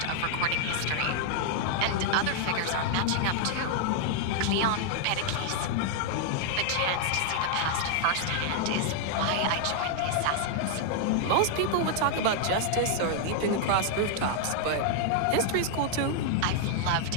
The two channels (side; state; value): both; different; correlation 0.00